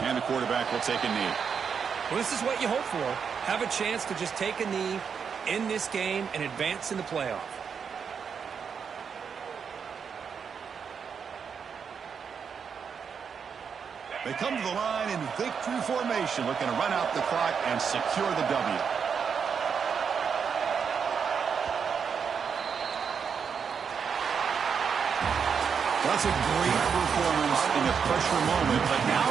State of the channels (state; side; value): quieter; left; 6.6 dB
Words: And the quarterback will take a knee. Well, this is what you hope for. Have a chance to just take a knee end this game and advance in the playoff. They come to the line in victory formation, looking to run out the clock and secure the W. That's a great performance in a pressure moment, but now